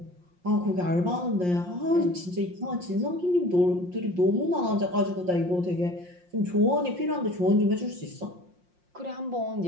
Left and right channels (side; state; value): left; late; 5.6 ms